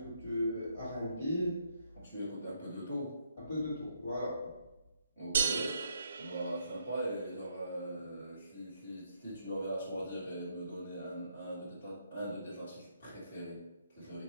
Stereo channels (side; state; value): both; inverted; correlation -0.74